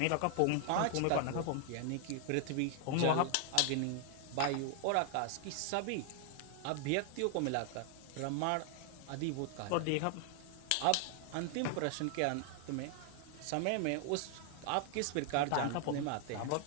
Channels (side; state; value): both; different; correlation 0.00